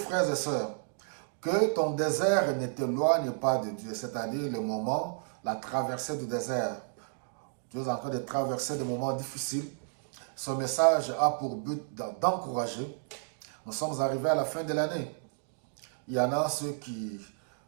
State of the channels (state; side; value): silent; left; digital silence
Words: et sœurs, que ton désert ne t'éloigne pas de Dieu, c'est-à-dire le moment, la traversée du désert. Tu es en train de traverser des moments difficiles. Ce message a pour but d'encourager. Nous sommes arrivés à la fin de l'année. Il y en a ceux qui,